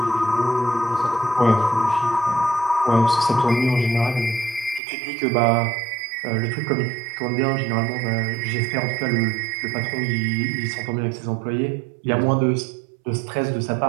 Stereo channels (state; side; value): drops out; left; at 4.8 s